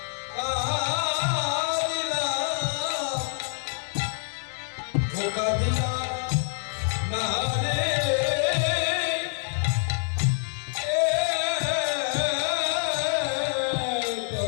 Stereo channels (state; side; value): silent; right; digital silence